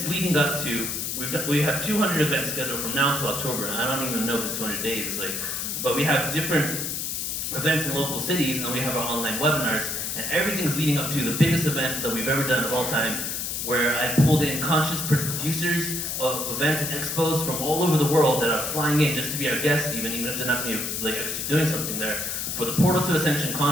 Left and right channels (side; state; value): left; noise; hiss, 3 dB below the sound